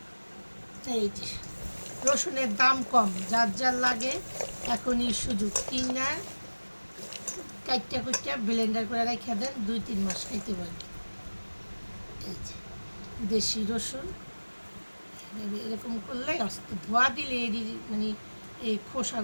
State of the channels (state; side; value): inverted; both; correlation -1.00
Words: এই যে রসুনের দাম কম, যার যার লাগে এখনই সুযোগ, কিনা কাইটটা কুইটটা ব্লেন্ডার করে রেখে দেন, 2-3 মাস খাইতে পারেন। এই যে দেশি রসুন এরকম করলে ধোয়া দিলে এরই মানে এই